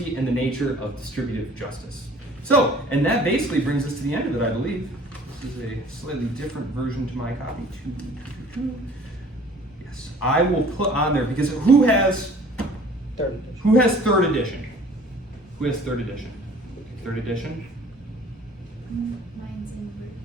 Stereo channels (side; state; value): both; normal; correlation 0.51